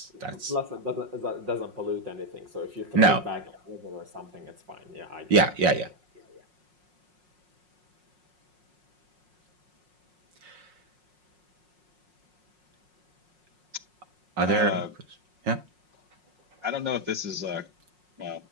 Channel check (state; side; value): late; left; 5.5 ms